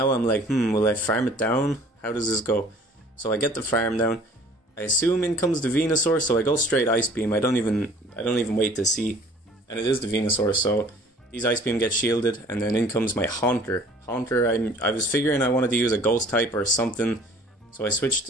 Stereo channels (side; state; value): both; normal; correlation 0.51